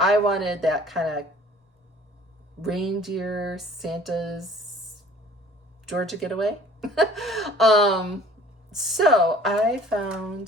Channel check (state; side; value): normal; both; correlation 0.50